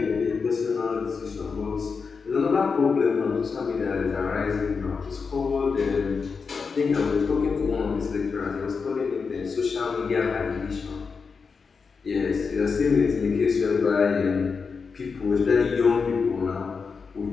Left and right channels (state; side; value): quieter; right; 5.2 dB